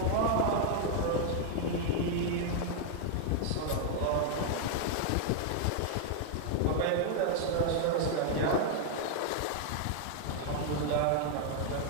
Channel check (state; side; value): different; both; correlation 0.00